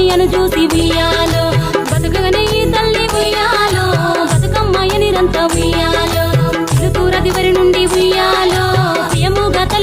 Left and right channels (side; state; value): both; identical; correlation 1.00